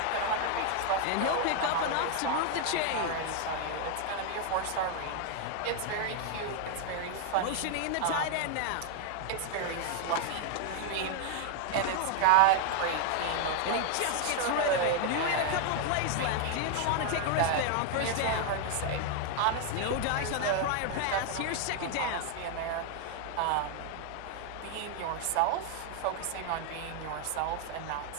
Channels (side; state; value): both; different; correlation 0.00